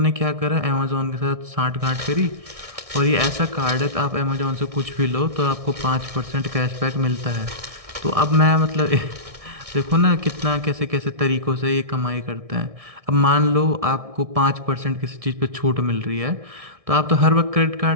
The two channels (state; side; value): late; left; 1.6 ms